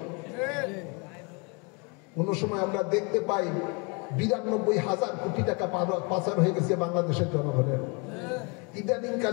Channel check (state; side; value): quieter; right; 32.1 dB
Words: কোন সময় আমরা দেখতে পাই 92,000 কোটি টাকা পাচার হয়ে গেছে বাংলাদেশের জনগণের। ইদানিং